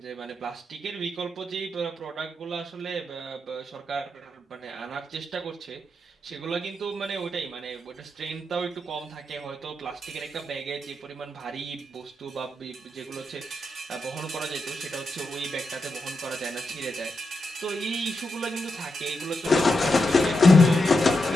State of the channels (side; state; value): both; normal; correlation 0.86